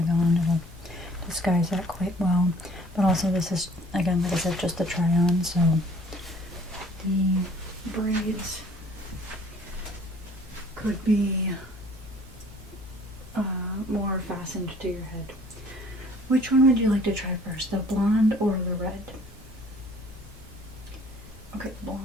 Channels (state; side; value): normal; both; correlation 0.54